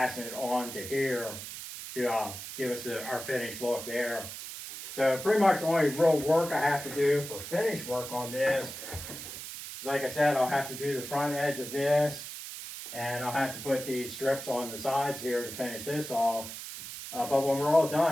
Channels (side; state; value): right; noise; hiss, 9 dB below the sound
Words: it on to here to give us our finished look there. So pretty much the only real work I have to do for finish work on this is, like I said, I'll have to do the front edge of this, and I'll have to put these strips on the sides here to finish this off. But when we're all